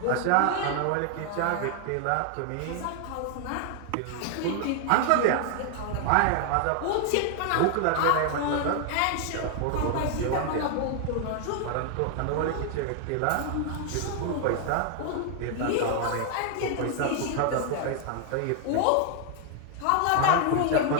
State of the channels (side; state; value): both; different; correlation 0.00